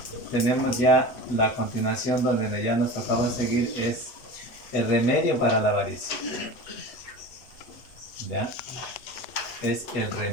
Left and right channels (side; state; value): right; late; 8.1 ms